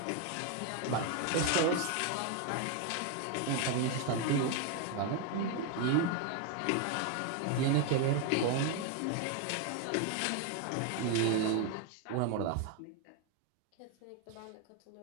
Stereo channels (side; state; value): both; different; correlation 0.01